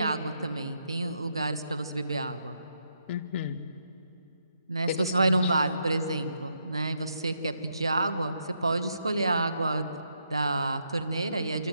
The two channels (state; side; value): inverted; both; correlation -0.78